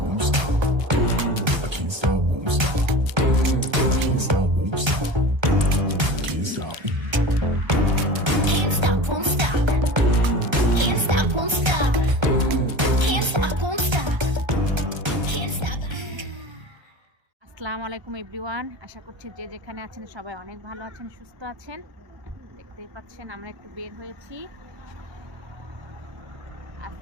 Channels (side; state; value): left; late; 1.3 ms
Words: won't stop. I can't stop, won't stop. I can't stop, won't stop. Can't stop. Can't stop, won't stop. Can't stop, won't stop. Can't stop, won't stop. Can't stop. আসসালামু আলাইকুম everyone, আশা করছি যে যেখানে আছেন সবাই অনেক ভালো আছেন, সুস্থ আছেন। দেখতেই পাচ্ছেন আমরা একটু বের হয়েছি।